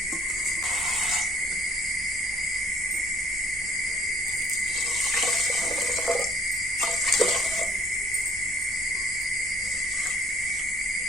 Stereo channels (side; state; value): right; noise; hum, 19 dB below the sound